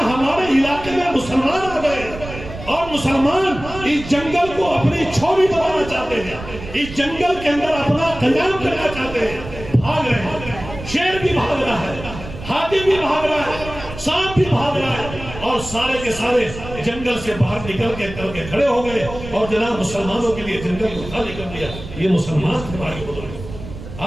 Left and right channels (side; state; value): right; noise; rumble, 12 dB below the sound